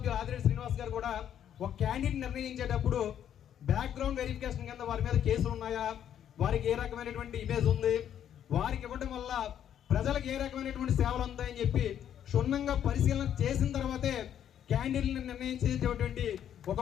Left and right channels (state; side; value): quieter; right; 9.9 dB